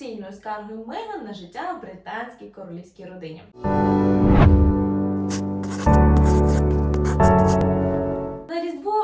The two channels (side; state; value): both; identical; correlation 1.00